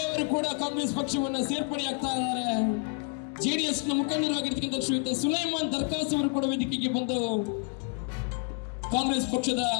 ಅವರು ಕೂಡ ಕಾಂಗ್ರೆಸ್ ಪಕ್ಷವನ್ನು ಸೇರ್ಪಡೆಯಾಗ್ತಾ ಇದ್ದಾರೆ. ಜೆಡಿಎಸ್ ನ ಮುಖಂಡರಾಗಿರ್ತಕ್ಕಂಥ ಶ್ರೀಯುತ ಸುಲೈಮಾನ್ ದರ್ಕಾಸ್ ಅವರು ಕೂಡ ವೇದಿಕೆಗೆ ಬಂದು ಕಾಂಗ್ರೆಸ್ ಪಕ್ಷದ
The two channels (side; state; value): right; quieter; 33.8 dB